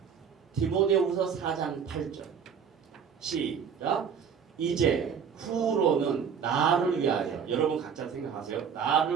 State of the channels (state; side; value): quieter; left; 7.1 dB